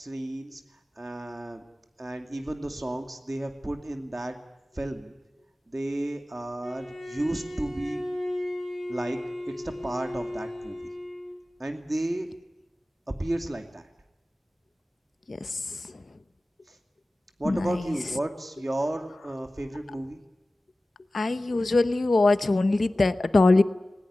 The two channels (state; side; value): normal; both; correlation 0.97